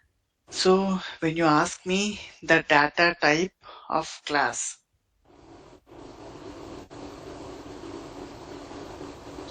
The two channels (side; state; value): both; identical; correlation 1.00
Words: So when you ask me the data type of class,